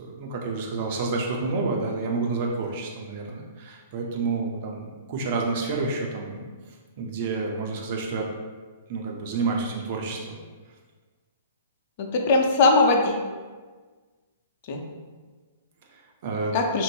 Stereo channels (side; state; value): both; inverted; correlation -0.41